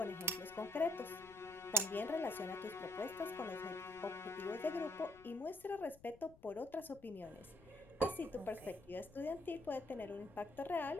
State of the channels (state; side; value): noise; left; rumble, 23 dB below the sound